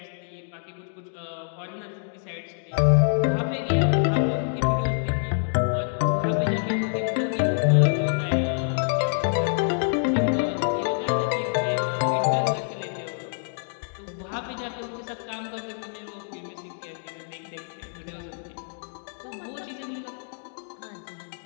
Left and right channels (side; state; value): right; silent; digital silence